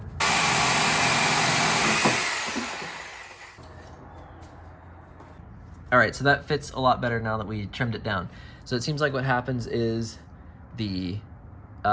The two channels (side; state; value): both; identical; correlation 1.00